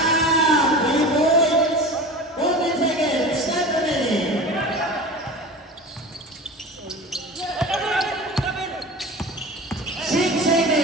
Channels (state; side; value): normal; both; correlation 0.34